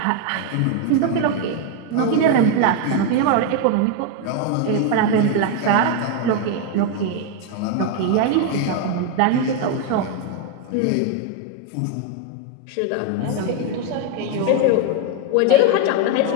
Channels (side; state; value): both; different; correlation 0.01